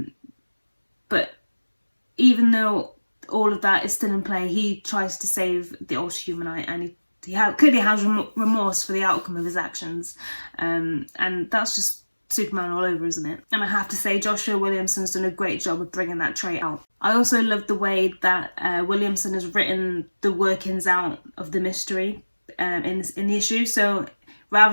But even though all of that is still in play, he tries to save the Ultra-Humanite, and he clearly has remorse for the outcome of his actions, and that's just Superman all over, isn't it? And I have to say, Joshua Williamson's done a great job of bringing that trait out. I also love the way that Williamson has written the workings out of the mystery in the issue. So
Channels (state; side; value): inverted; both; correlation -1.00